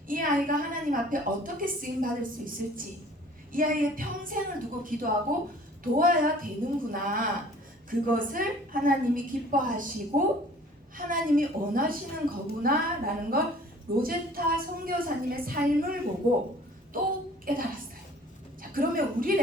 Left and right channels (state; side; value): normal; both; correlation 0.51